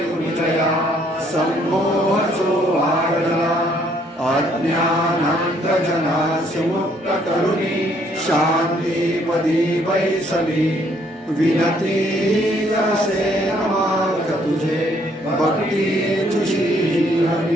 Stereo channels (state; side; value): normal; both; correlation 0.66